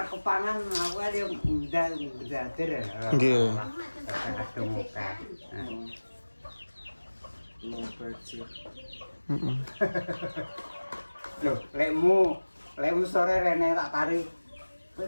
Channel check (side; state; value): both; inverted; correlation -1.00